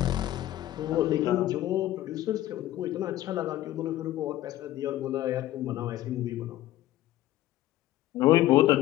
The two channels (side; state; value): right; quieter; 14.6 dB